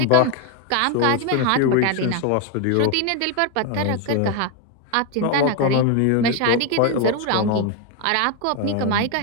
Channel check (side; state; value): both; different; correlation 0.02